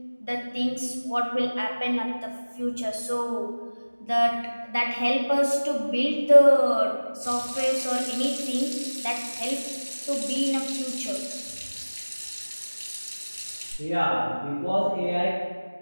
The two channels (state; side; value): inverted; both; correlation -1.00